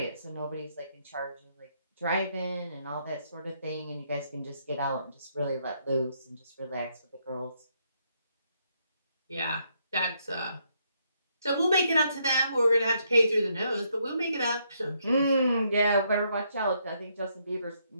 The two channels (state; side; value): inverted; both; correlation -0.74